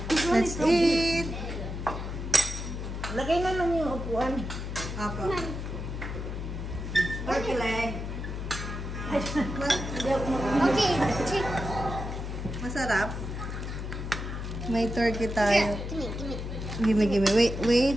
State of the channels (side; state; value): left; noise; hum, 5 dB below the sound